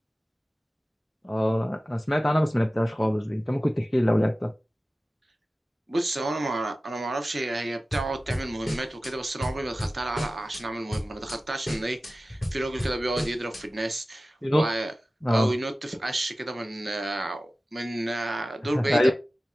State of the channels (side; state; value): both; normal; correlation 0.96